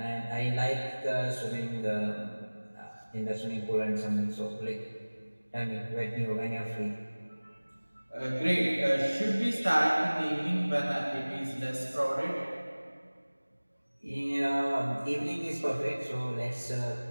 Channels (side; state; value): both; inverted; correlation -1.00